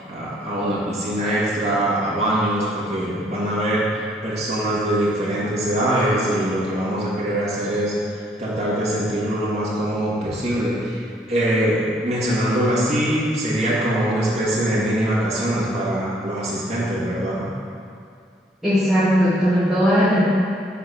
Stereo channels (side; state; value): both; normal; correlation 0.64